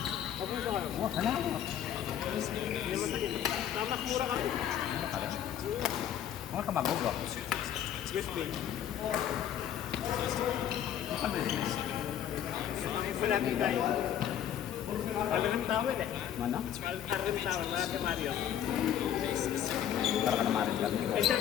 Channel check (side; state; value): right; quieter; 10.3 dB